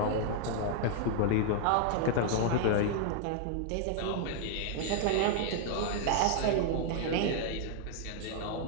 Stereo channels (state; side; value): different; both; correlation 0.00